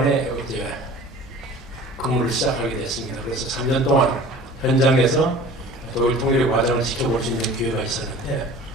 이제 근무를 시작하게 됐습니다. 그래서 3년 동안 현장에서 독일 통일의 과정을 지켜볼 수 있는 기회가 있었는데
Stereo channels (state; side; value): normal; both; correlation 0.43